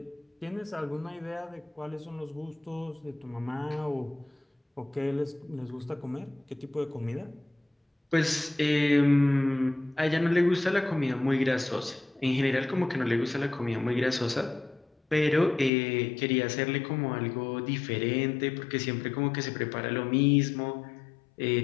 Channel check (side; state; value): right; drops out; at 15.7 s